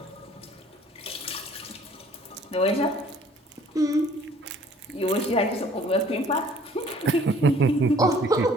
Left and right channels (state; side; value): normal; both; correlation 0.55